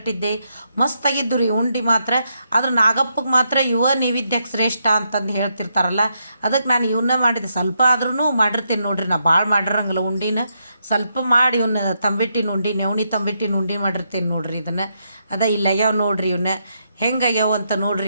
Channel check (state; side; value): inverted; both; correlation -0.80